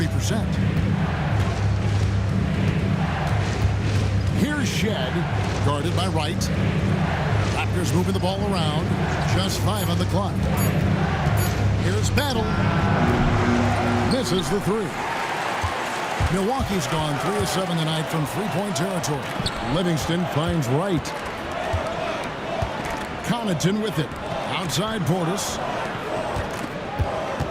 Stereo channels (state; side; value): identical; both; correlation 1.00